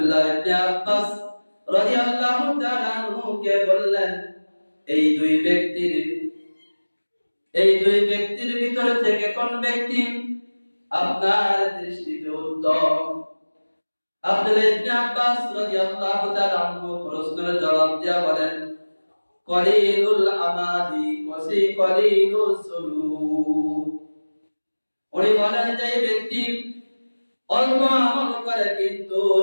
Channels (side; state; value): both; inverted; correlation -1.00